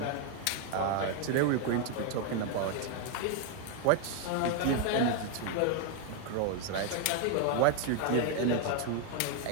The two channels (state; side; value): different; both; correlation 0.00